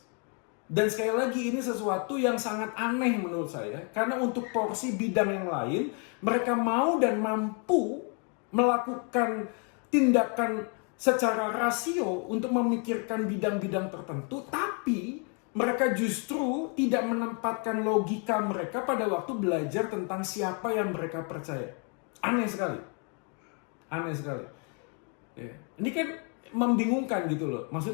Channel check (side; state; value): right; quieter; 38.0 dB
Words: Dan sekali lagi ini sesuatu yang sangat aneh menurut saya, karena untuk porsi bidang yang lain mereka mau dan mampu melakukan tindakan secara rasio untuk memikirkan bidang-bidang tertentu, tapi mereka justru tidak menempatkan logika mereka pada waktu belajar tentang siapa yang mereka percaya. Aneh sekali. Aneh sekali. Ya. Ini kan membingungkan gitu loh.